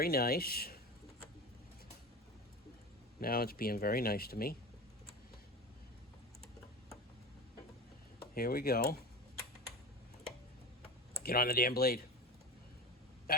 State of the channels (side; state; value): both; normal; correlation 0.28